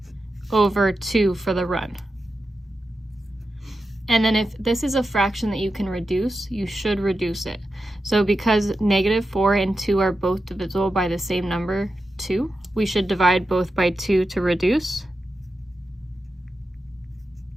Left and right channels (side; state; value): both; normal; correlation 0.90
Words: over 2 for the run. And then if this is a fraction that you can reduce, you should reduce it. So because -4 and 2 are both divisible by the same number, 2, we should divide both by 2 to reduce.